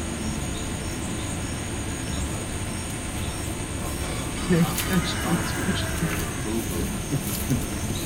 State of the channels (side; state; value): both; identical; correlation 1.00